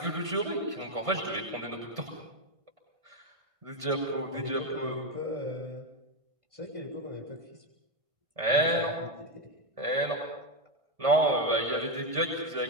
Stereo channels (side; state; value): left; late; 1.6 ms